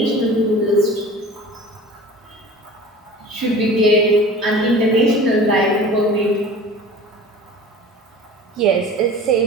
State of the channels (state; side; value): normal; both; correlation 0.41